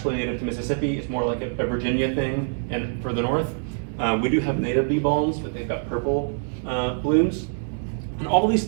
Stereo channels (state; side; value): silent; left; 62 dB below the other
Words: native to Mississippi. It's more like a Virginia thing and for the north. We do have native bee balms, but they've got purple blooms. And all these